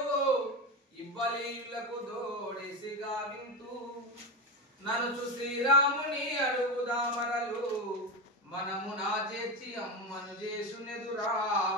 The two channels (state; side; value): normal; both; correlation 0.17